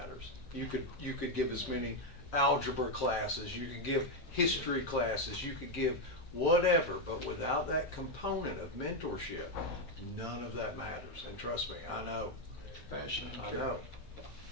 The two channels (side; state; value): right; late; 15 ms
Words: You could give as many algebra classes, you could give history classes, you could give whatever, but without that component of mentorship, none of that matters. And trust me, I know. passion and I care. know.